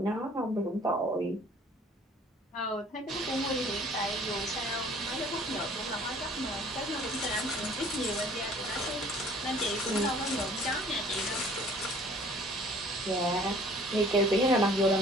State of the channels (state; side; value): normal; both; correlation 0.53